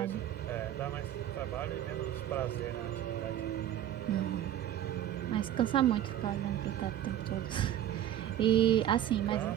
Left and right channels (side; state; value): left; quieter; 11.4 dB